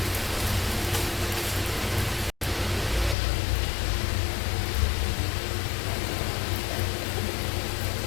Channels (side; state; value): right; drops out; at 3.2 s